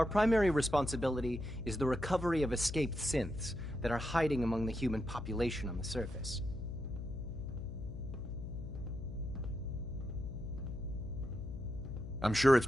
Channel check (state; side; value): noise; left; hum, 7 dB below the sound